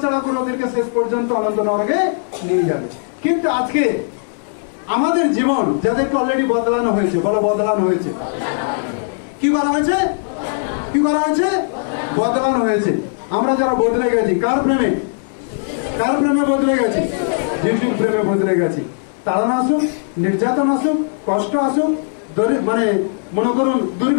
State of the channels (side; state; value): right; silent; digital silence